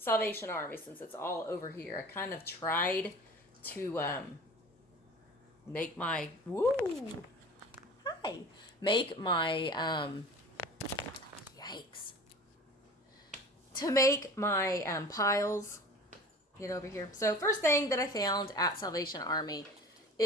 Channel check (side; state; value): both; normal; correlation 0.40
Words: Army since it's all over here. I kind of tried to make my yikes, to make my piles. Get over here. So first thing that I found at Salvation Army